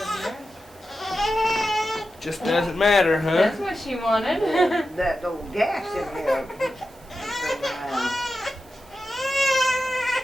Just doesn't matter, huh? That's what she wanted. That old gas in there.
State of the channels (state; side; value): noise; right; hiss, 28 dB below the sound